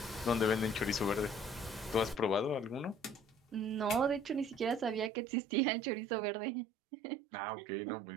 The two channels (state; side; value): drops out; left; at 5.1 s